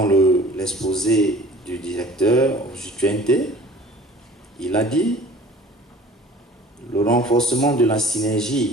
l'exposé du directeur Jutuente, il a dit Le renforcement de la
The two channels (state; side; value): normal; both; correlation 0.47